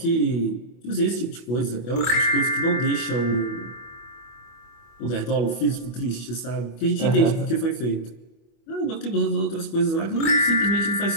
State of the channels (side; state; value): right; late; 25 ms